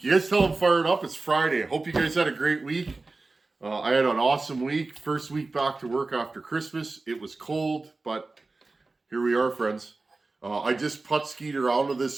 guys tell I'm fired up. It's Friday. I hope you guys had a great week. I had an awesome week. First week back to work after Christmas. It was cold, but here we are, friends. I just putt-skied around with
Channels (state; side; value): quieter; left; 3.5 dB